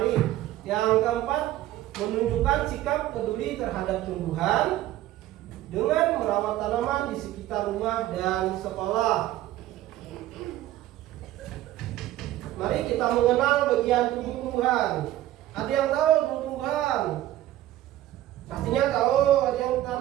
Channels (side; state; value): left; quieter; 14.3 dB